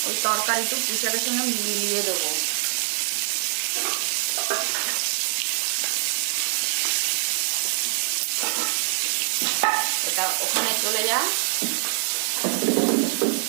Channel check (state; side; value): silent; left; digital silence